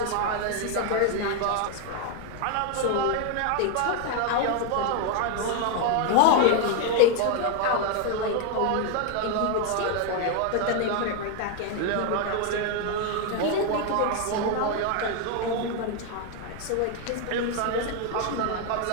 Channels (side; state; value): both; different; correlation 0.01